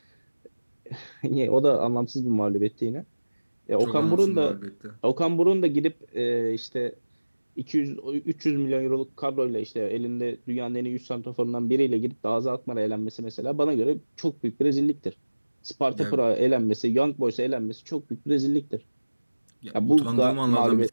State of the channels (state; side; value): inverted; both; correlation -1.00